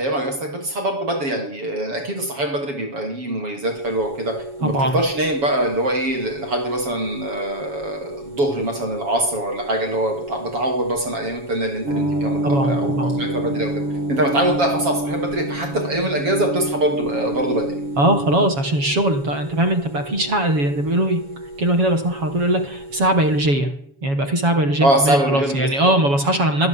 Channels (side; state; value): left; late; 7.2 ms